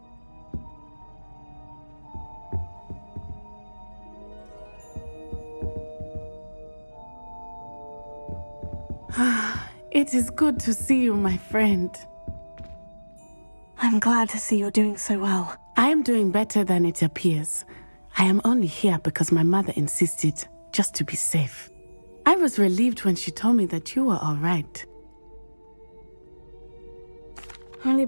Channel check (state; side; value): inverted; both; correlation -1.00